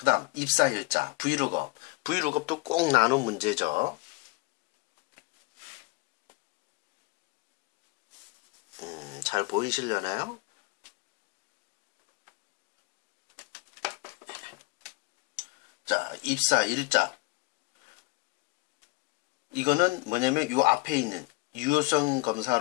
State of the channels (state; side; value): quieter; right; 23.9 dB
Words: 다음 입사일자, 브이룩업. 브이룩업도 꼭 나눈 문제죠. 잘 보이시려나요? 자, 입사일자. 이거는 뭐냐면 요 앞에 있는 유효성